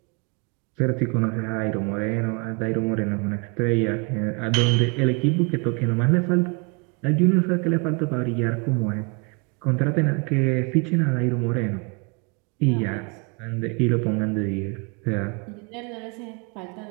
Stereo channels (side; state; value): left; quieter; 32.4 dB